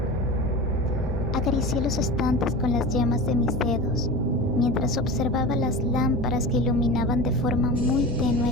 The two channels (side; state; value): both; normal; correlation 0.30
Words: Acaricié los estantes con las yemas de mis dedos, mientras observaba las lámparas que iluminaban de forma muy